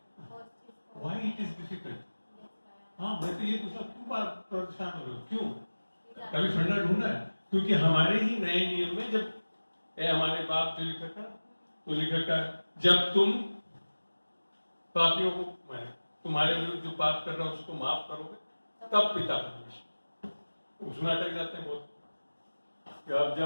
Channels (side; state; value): both; inverted; correlation -1.00